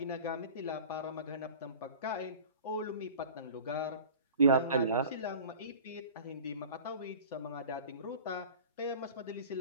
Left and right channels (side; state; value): both; inverted; correlation -0.41